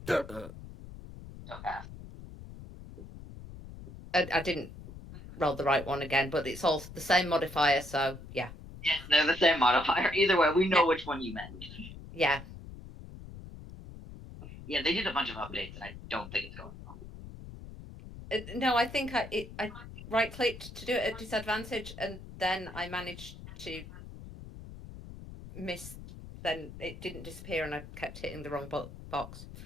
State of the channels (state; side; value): noise; left; rumble, 14 dB below the sound